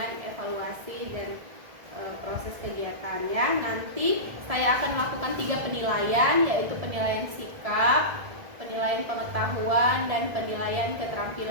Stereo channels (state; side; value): late; left; 1.5 ms